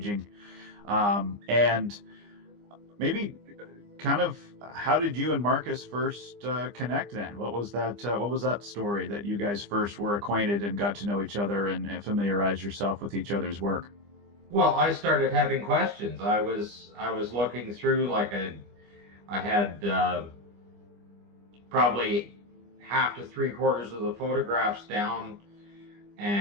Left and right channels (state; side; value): late; left; 25 ms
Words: And maybe kind of how did you and Marcus first connect then? What was that story that you guys first were acquainted and got to know each other and familiarize yourself with each other's work? Well, I started having questions. I was looking through, like I had probably half to 3/4 of the photographs down,